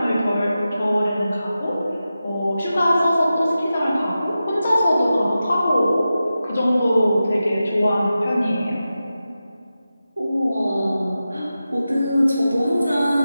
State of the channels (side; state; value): both; inverted; correlation -0.92